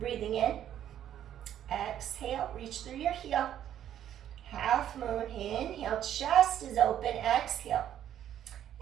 in. Exhale, reach through your heel. Half moon, inhale, chest is open, exhale.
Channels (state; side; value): quieter; left; 10.7 dB